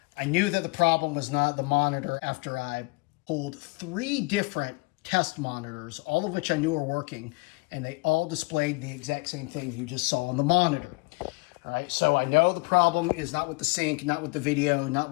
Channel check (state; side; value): quieter; right; 27.1 dB